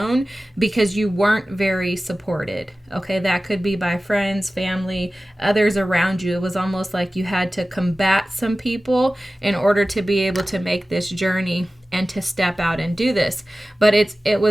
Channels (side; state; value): both; normal; correlation 0.96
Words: because you weren't very supported. Okay, that could be by friends, family, others around you. It was almost like you had to combat some people in order to be able to make this journey and to step out and do this. But it